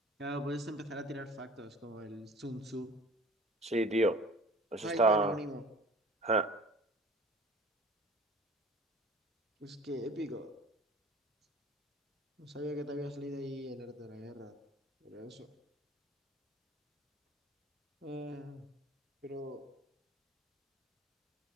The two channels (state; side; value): normal; both; correlation 0.46